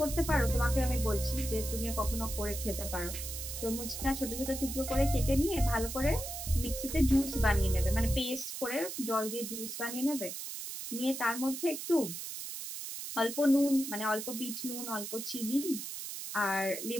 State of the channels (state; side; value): noise; right; hiss, 7 dB below the sound